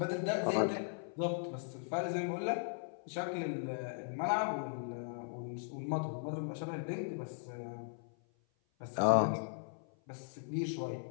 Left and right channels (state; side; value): silent; right; 52 dB below the other